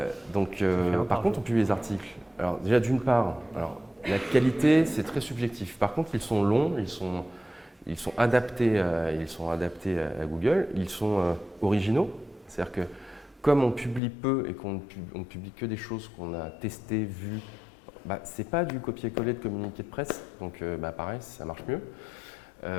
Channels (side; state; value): right; drops out; at 14.0 s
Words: donc, par contre, on publie les articles. Alors, déjà, d'une part, alors, la qualité, c'est très subjectif. Par contre, ils sont longs, ils sont adaptés à Google, ils sont originaux. C'est-à-dire que, comme on publie peu et qu'on ne publie que des choses qu'on a testées, vues, c'est pas du copier-coller de communiqué de presse. Donc, pareil, ça marche mieux.